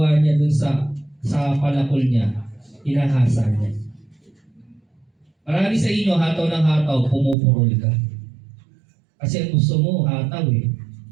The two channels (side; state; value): left; drops out; at 7.4 s